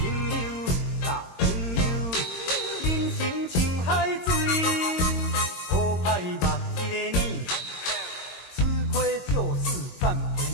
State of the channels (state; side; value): late; right; 22 ms